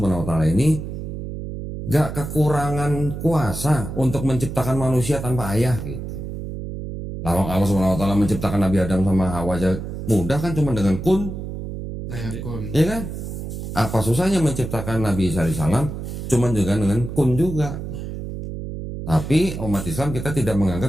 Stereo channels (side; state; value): right; noise; hum, 7 dB below the sound